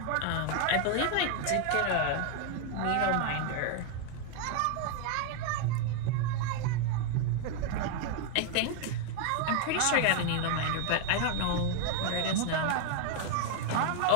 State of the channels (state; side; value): different; both; correlation 0.00